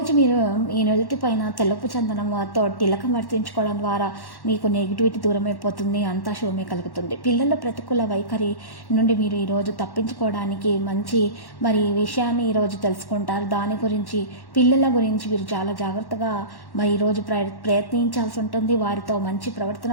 మీరు ఈ నుదుటి పైన తెల్లపు చందనంతో తిలకం వర్తించుకోవడం ద్వారా మీకు నెగిటివిటీ దూరం అయిపోతుంది. అంతా శుభమే కలుగుతుంది. పిల్లల ప్రతికూల వైఖరి నుండి మీరు ఈరోజు తప్పించుకోవడానికి మంచి విషయాన్ని ఈరోజు తెలుసుకుంటారు. దాని గురించి పిల్లల గురించి మీరు చాలా జాగ్రత్తగా ఈరోజు ప్రయత్నించాల్సి ఉంటుంది. వారితో మంచి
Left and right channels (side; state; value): right; late; 1.1 ms